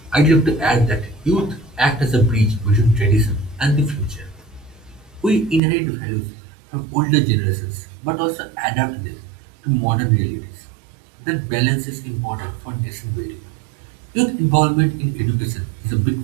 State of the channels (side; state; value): left; drops out; at 5.6 s